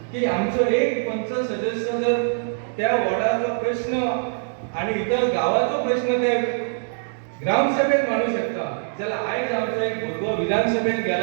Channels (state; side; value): silent; left; digital silence